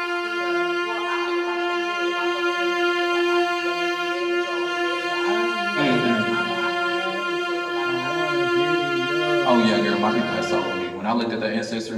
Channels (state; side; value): identical; both; correlation 1.00